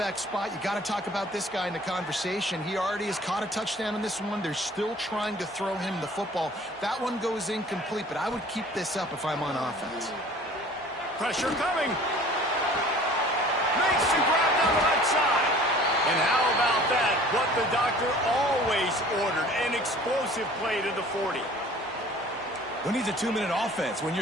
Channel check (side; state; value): both; normal; correlation 0.49